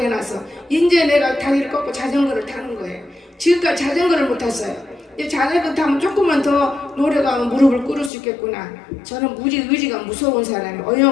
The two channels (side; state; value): right; drops out; at 8.1 s